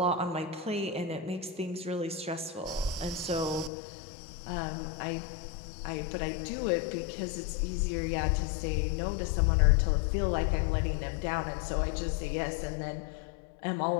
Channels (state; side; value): drops out; right; at 3.7 s